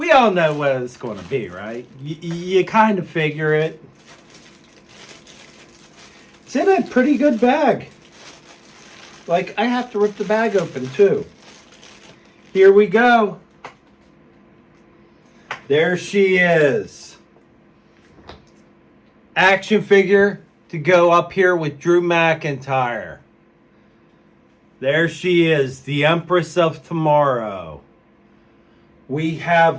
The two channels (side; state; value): both; identical; correlation 1.00